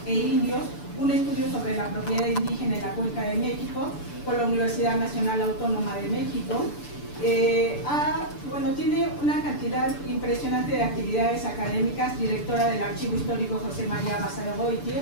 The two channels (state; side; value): late; right; 6.9 ms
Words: e Indios, un estudio sobre la propiedad indígena en la Cuenca de México, por la Universidad Nacional Autónoma de México. Tiene una cantidad impresionante de actividades académicas, directora del Archivo Histórico José María Basagoiti,